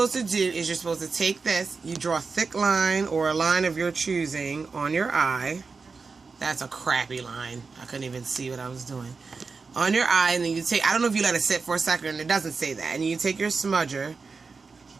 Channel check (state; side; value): quieter; left; 4.6 dB